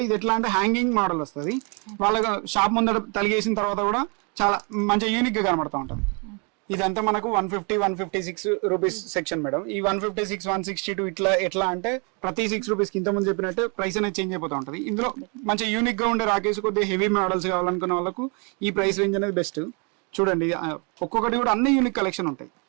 ఇది ఎట్లా అంటే హ్యాంగింగ్ మోడల్ వస్తుంది. వాళ్ళ షాప్ ముందర తలిగేసిన తర్వాత కూడా చాలా మంచిగా యూనిక్ గా కనబడతా ఉంటుంది. ఇదంతా మనకు 150, 156 రూపీస్ సెక్షన్ మేడం. ఈ 156, 162 ఇట్లా ఎట్లా అంటే ప్రతి 6 రూపీస్ కింద ముందు చెప్పినట్టు ప్రైస్ అనేది చేంజ్ అయిపోతూ ఉంటుంది. ఇందులో మంచి యూనిక్ గా ఉండే రాకేసి కొద్దిగా హెవీ మోడల్స్ కావాలనుకున్న వాళ్ళకు ఈ ప్రైస్ రేంజ్ అనేది బెస్ట్. చూడండి, ఒక్కొక్కటి కూడా అన్ని యూనిక్ కలెక్షన్ ఉంటాయి,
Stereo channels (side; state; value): left; quieter; 34.7 dB